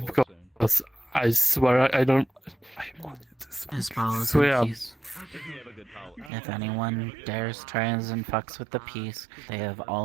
because I swear I don't. I wanted this. As well as So, the yeah. peace. If anyone dares tries and fucks with the peace, they have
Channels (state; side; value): drops out; left; at 6.3 s